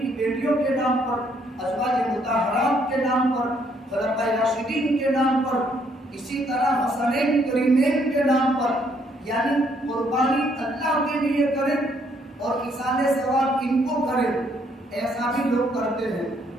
بیٹیوں کے نام پر, ازواج مطہرات کے نام پر, خلفائے راشدین کے نام پر, اسی طرح حسنین کریمین کے نام پر, یعنی قربانی اللہ کے لیے کریں اور ایصال ثواب ان کو کریں, ایسا بھی لوگ کرتے ہیں.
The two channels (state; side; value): normal; both; correlation 0.69